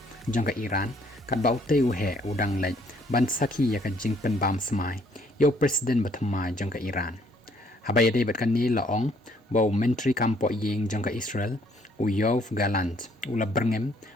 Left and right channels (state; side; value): normal; both; correlation 0.65